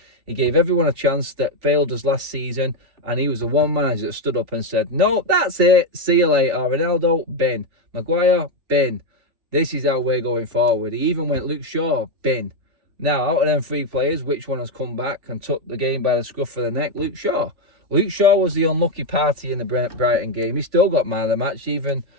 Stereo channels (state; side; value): late; left; 3.5 ms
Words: He gave everyone a chance that failed us last season, and he was the one manager that stood up and said, no, that's it. See you later. Ronaldo, bin. Maguire, bin. This is how we're going forward. He even went Luke Shaw, bin. Now, out of them 3 players, which one has come back and took the game by the scruff of the neck? Luke Shaw. Luke Shaw was the unlucky party in the Brighton game. He still got man of the match, even